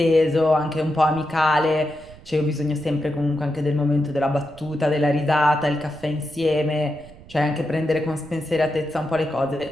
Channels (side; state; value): right; noise; rumble, 21 dB below the sound